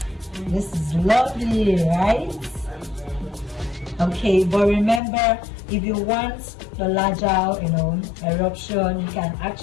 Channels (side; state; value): right; drops out; at 5.0 s